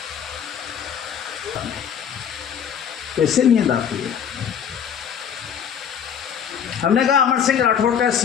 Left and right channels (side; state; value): right; quieter; 8.2 dB